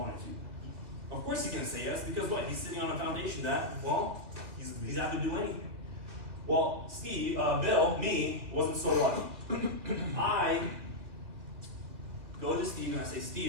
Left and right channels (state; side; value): late; left; 2.5 ms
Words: to? Of course he's gonna say yes, because what? He's sitting on a foundation that, well, he's out to do anything. Well, Steve, Bill, me, wasn't so lucky. I go to Steve and I say,